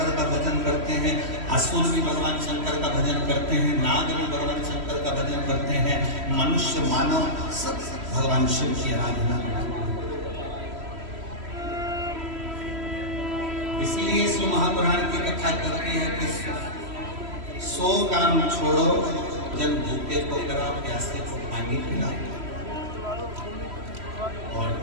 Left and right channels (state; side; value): late; left; 3.1 ms